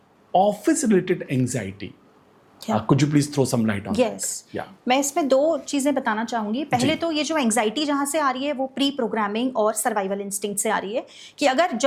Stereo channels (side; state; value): both; identical; correlation 1.00